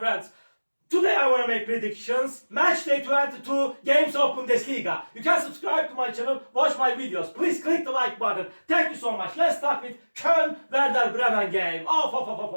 Today I want to make predictions. Match day 22 games of Bundesliga. You can subscribe to my channel, watch my videos. Please click the like button. Thank you so much. Let's start with Köln-Werder Bremen game.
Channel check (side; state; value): both; inverted; correlation -1.00